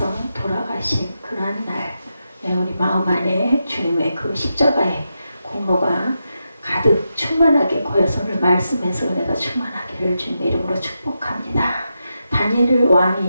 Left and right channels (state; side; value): inverted; both; correlation -0.87